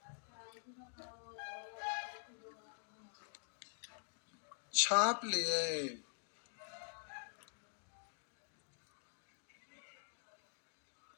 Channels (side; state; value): right; silent; digital silence